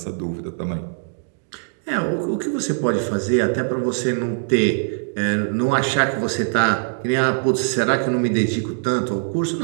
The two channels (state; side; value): silent; left; 64 dB below the other